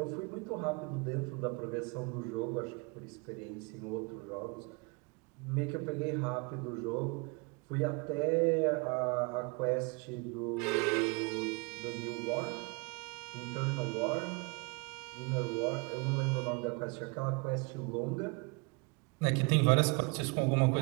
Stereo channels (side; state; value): left; quieter; 29.7 dB